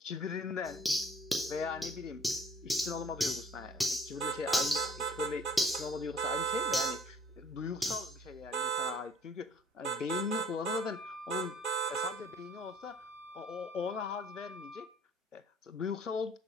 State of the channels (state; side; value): normal; both; correlation 0.54